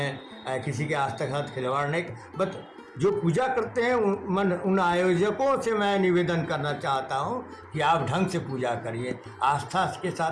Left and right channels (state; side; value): identical; both; correlation 1.00